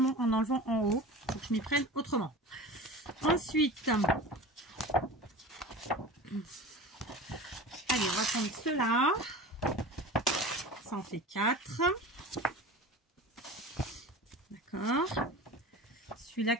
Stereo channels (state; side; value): normal; both; correlation 0.35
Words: en enlevant en haut. Il faut que je m'y prenne autrement. Ensuite, allez, on va prendre ceux-là. Ça en fait 4. D'accord. Celui-là